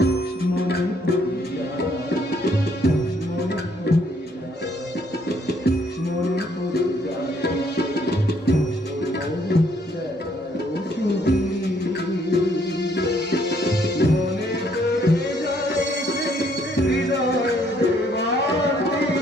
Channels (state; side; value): normal; both; correlation 0.67